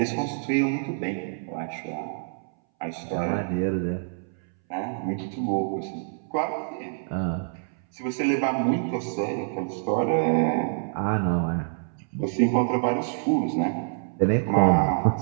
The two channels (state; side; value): silent; left; 61 dB below the other